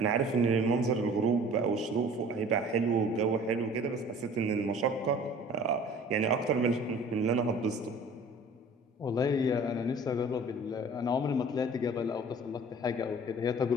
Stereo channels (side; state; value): both; normal; correlation 0.47